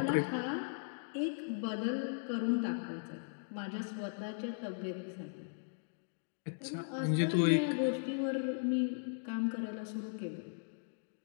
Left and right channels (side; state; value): right; silent; digital silence